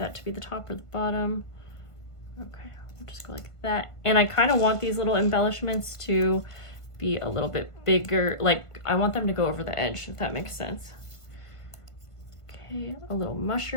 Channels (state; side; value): late; right; 1.5 ms